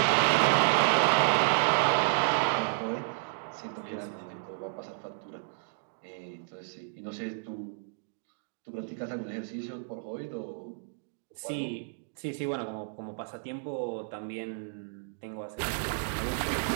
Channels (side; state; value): left; silent; digital silence